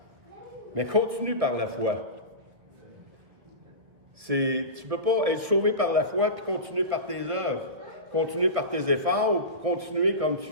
mais continue par la foi. Tu ne peux pas être sauvé par la foi puis continuer par tes œuvres, continuer par tes efforts ou continuer comme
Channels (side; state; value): left; late; 1.8 ms